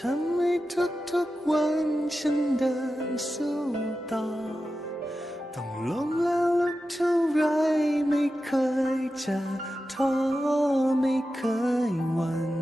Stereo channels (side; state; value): both; normal; correlation 0.92